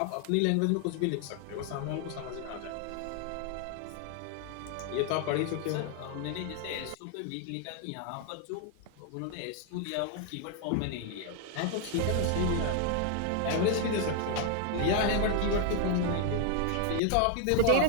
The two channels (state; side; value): different; both; correlation 0.01